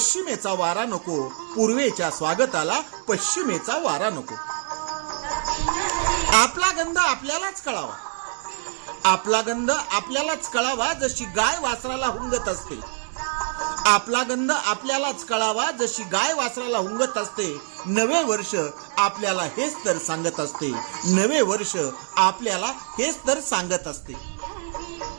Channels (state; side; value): silent; left; digital silence